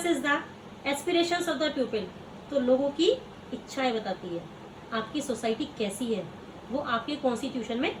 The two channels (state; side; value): identical; both; correlation 1.00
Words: the aspirations of the people. तो लोगों की इच्छाएं बताती है। आपकी सोसाइटी कैसी है वो आपके कॉन्स्टिट्यूशन में